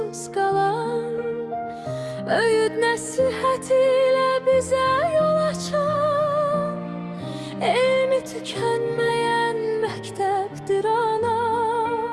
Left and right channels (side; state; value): both; identical; correlation 1.00